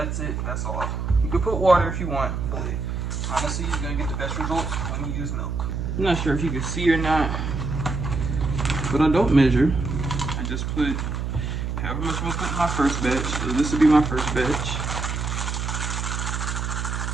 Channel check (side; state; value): right; noise; hum, 2 dB below the sound